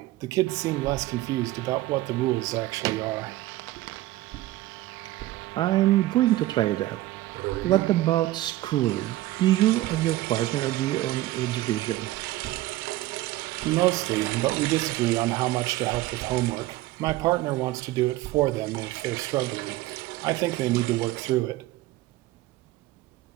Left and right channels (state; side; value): quieter; left; 16.7 dB